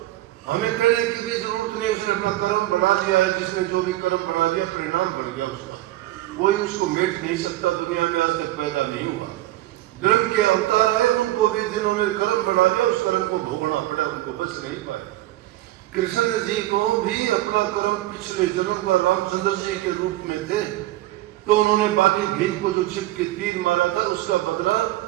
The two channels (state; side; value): quieter; left; 16.1 dB